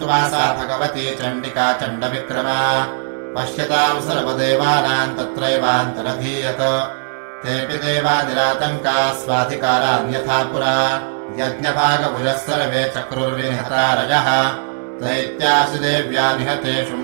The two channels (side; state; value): left; silent; digital silence